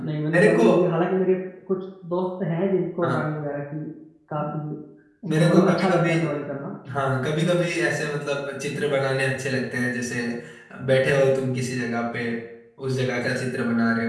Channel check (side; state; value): both; identical; correlation 1.00